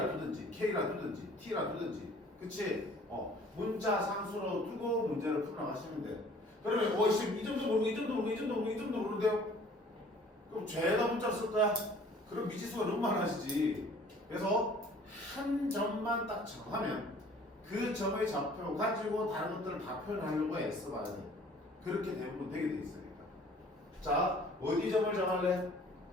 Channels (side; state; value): both; normal; correlation 0.52